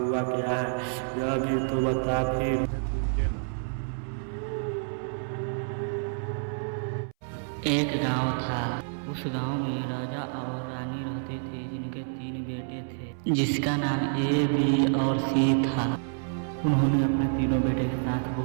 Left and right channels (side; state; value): left; silent; 59 dB below the other